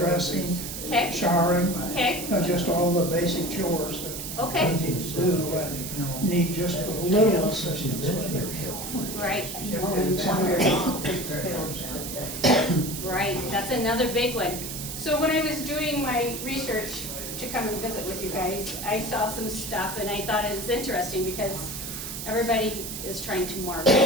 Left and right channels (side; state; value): right; noise; hiss, 7 dB below the sound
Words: okay, showering, okay, just all the basic chores that okay, you need to do. Need just a little assistance with it. right, And right, that's another big one. So when I was doing my research to come and visit with you guys, I saw some stuff and I thought it was interesting because everybody is trying to